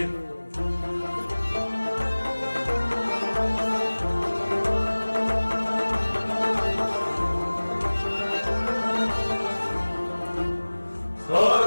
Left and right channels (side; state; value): both; inverted; correlation -1.00